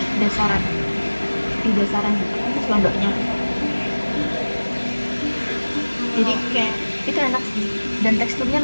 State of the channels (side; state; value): both; inverted; correlation -1.00